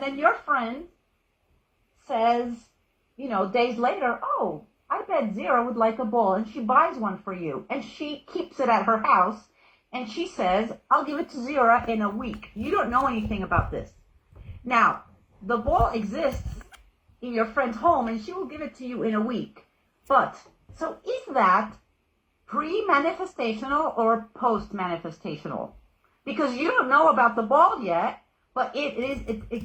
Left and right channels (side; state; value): both; identical; correlation 1.00